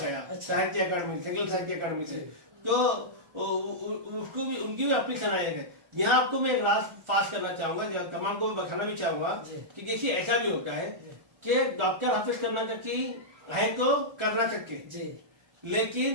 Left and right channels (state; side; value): late; left; 1.4 ms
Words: साहित्य अकादमी, संगील साहित्य अकादमी से, तो उसको भी उनकी भी अपनी सलाहियत है। यहाँ आपको मैं एक राज पास करना चाहूंगा, तमाम को बताना भी चाहूंगा कि देखिए ऐसा भी होता है कि डॉक्टर हाफिज कर्नाटकी है तो कर्नाटक के,